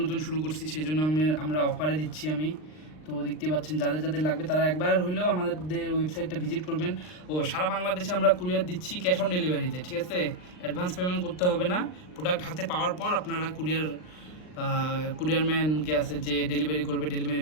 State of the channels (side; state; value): right; late; 39 ms